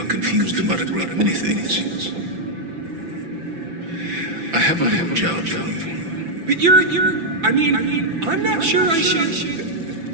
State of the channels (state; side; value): late; left; 5.9 ms